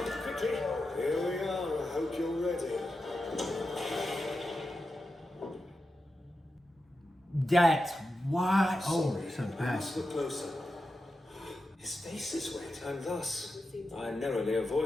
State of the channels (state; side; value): normal; both; correlation 0.90